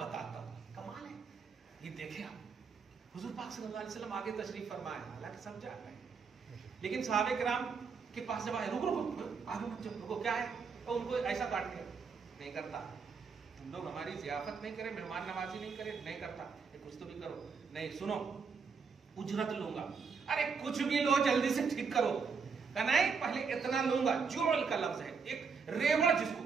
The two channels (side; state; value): left; quieter; 5.5 dB